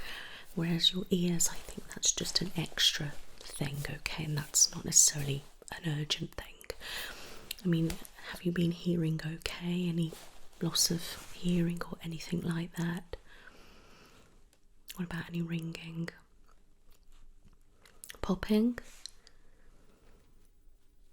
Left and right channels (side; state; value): both; identical; correlation 1.00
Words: whereas your ears, I think that's just an extra thing, okay, and that's not necessarily an urgent thing. I mean, have you been hearing okay? Any loss of hearing or anything like that? What about any ringing? Popping?